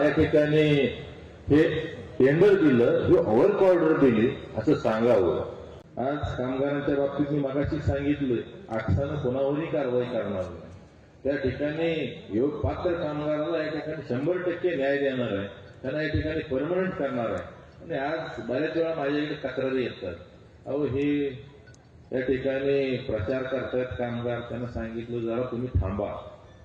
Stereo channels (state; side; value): identical; both; correlation 1.00